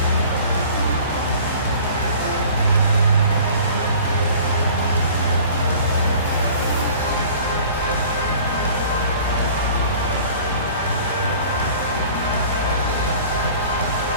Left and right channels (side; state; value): both; inverted; correlation -0.46